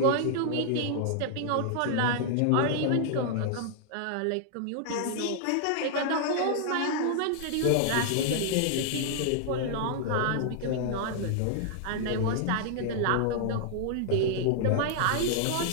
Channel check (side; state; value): both; different; correlation -0.01